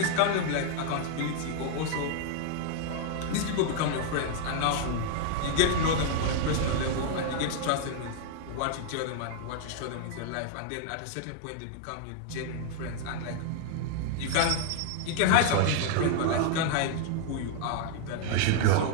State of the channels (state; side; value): different; both; correlation 0.00